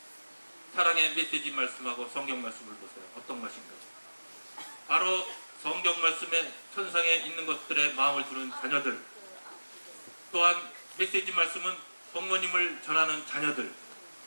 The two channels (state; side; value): inverted; both; correlation -1.00